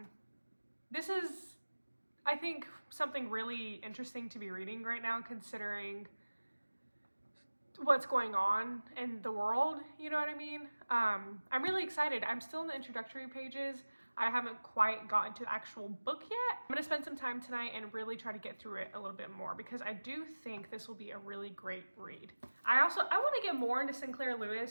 This is, I think, something really interesting to be reading right now, considering what's going on in the world, you know what I mean? I'm really excited. I'm still in the introductory pages. I haven't quite gotten to the actual book yet. I'm gonna spend some time tonight and really try to get through it a little bit more, because I do think this will be a really great read. I want to get more into Sinclair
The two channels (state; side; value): inverted; both; correlation -1.00